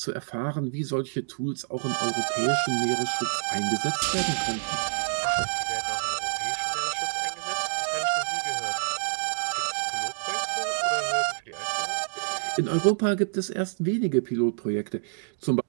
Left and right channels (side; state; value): left; silent; digital silence